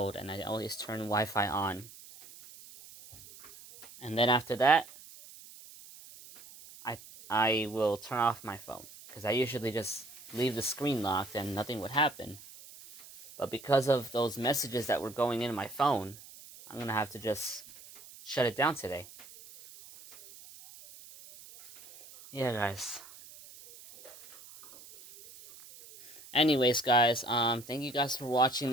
and I always turn Wi-Fi on. And then after that, I will turn off my phone because I usually just leave the screen locked and nothing would happen. But because of those messages that were going into my phone, I'm gonna have to just shut it down today. Yeah, guys. Anyways, guys, thank you guys for watching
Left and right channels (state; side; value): noise; right; hiss, 19 dB below the sound